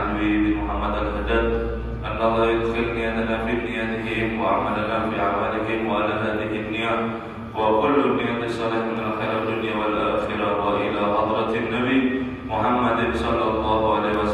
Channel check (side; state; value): both; identical; correlation 1.00